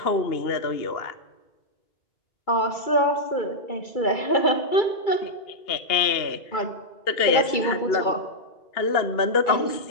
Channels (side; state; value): right; late; 2.3 ms